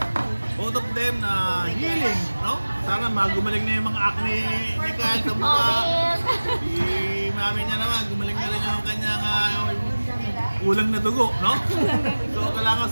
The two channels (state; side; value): inverted; both; correlation -1.00